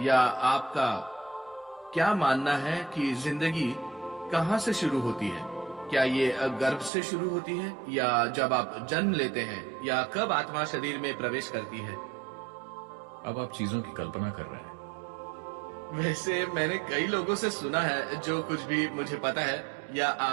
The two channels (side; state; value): left; drops out; at 6.9 s